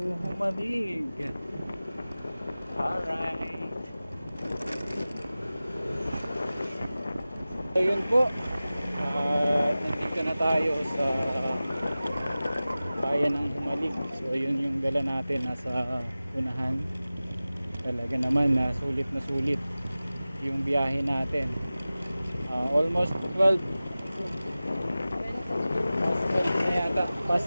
Humalig. Alright. Ayun po. Nandito na tayo sa bayan ng Humalig. So ayun yung dala natin nasa unahan. Talaga naman na sulit yung biyahe natin. Almost 12. Past 12 na yata. Past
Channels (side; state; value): both; inverted; correlation -0.97